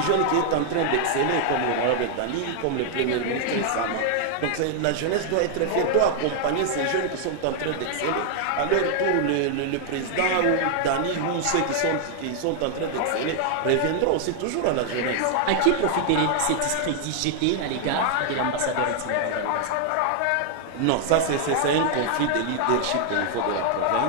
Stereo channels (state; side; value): different; both; correlation 0.00